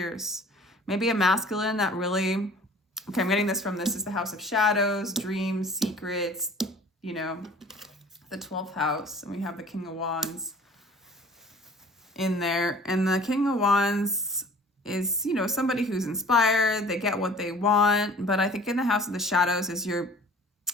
Maybe a masculine that really, okay, I'm getting this from, this is the house of shadows, dreams, secrets, you know, the 12th house. And we have the King of Wands in there. And the King of Wands is, you know, somebody who's inspired. They get what they want. But I think in the house of the shadows is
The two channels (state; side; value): normal; both; correlation 0.48